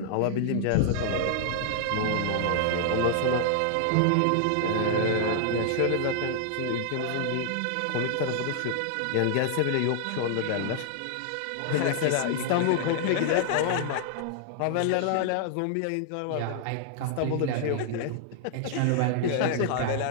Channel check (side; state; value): both; different; correlation 0.00